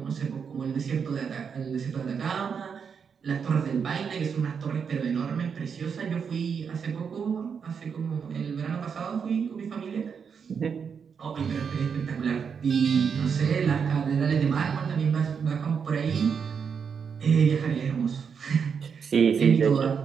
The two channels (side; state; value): left; quieter; 6.5 dB